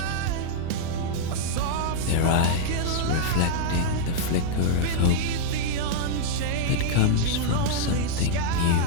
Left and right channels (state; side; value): different; both; correlation -0.01